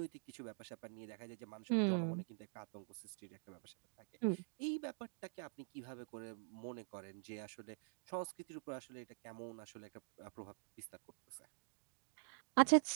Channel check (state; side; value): silent; left; digital silence